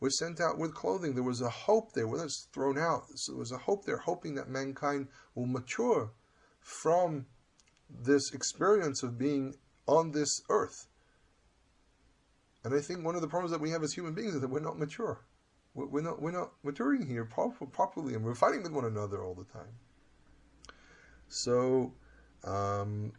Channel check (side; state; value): both; identical; correlation 1.00